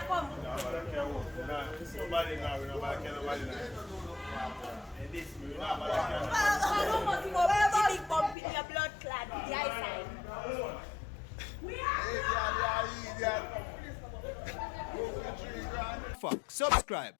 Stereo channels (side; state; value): right; drops out; at 8.3 s